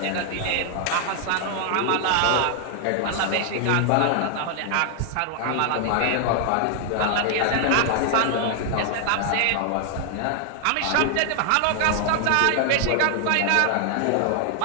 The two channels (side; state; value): both; different; correlation 0.00